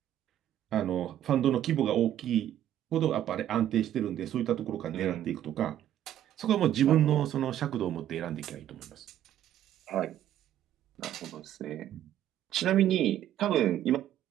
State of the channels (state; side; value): quieter; left; 11.6 dB